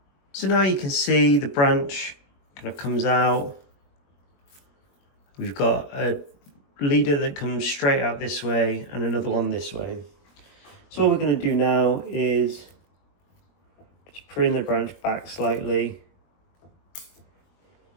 So now you can see the branch kind of comes out. We've got a leader that comes straight out this way and another one this way. So what we're going to do now is just prune the branch back slightly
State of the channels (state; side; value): late; right; 21 ms